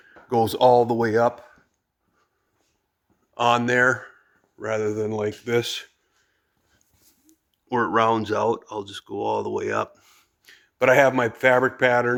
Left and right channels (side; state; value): both; identical; correlation 1.00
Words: goes all the way up on there rather than like this, where it rounds out. I'll just go all the way up. But I have my fabric